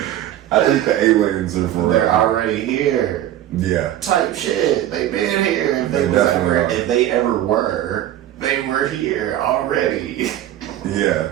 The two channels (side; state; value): left; quieter; 12.6 dB